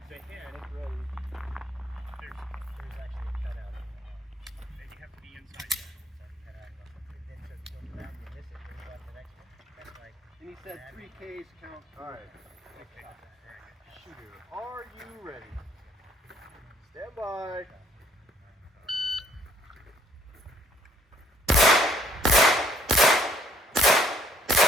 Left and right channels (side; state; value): both; normal; correlation 0.63